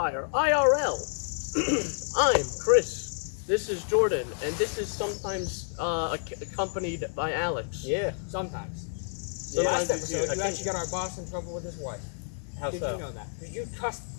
IRL. I'm Chris. This is Jordan, and this is sometimes accompanied by Alex. Yeah, sometimes. Yeah, Last episode, you actually got our boss in trouble with his wife. How Did so? you know that? Because you cussed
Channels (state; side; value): silent; right; digital silence